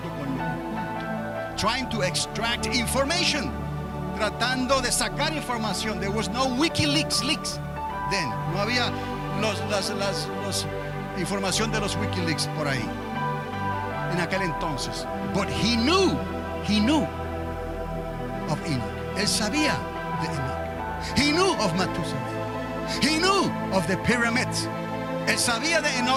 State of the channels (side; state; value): both; identical; correlation 1.00